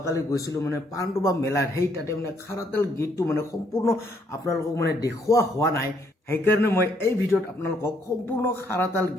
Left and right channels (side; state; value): both; normal; correlation 0.70